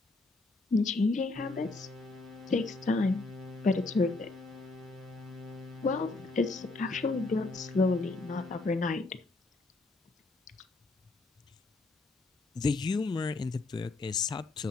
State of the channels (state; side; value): quieter; right; 3.3 dB